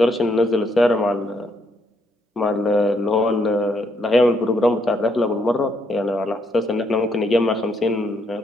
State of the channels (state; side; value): normal; both; correlation 0.73